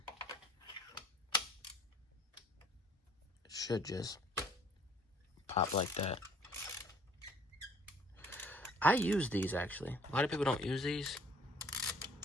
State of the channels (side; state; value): both; normal; correlation 0.57